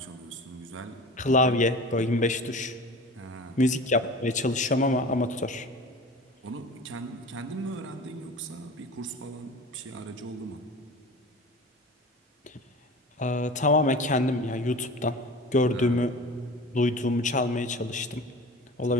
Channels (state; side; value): normal; both; correlation 0.37